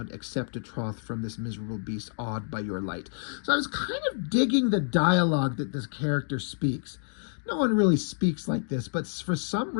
accept a troth from this miserable beast, awed by your light. So I was kind of digging the dialogue that this character speaks. No one really speaks like this, but for some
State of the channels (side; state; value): right; silent; 59 dB below the other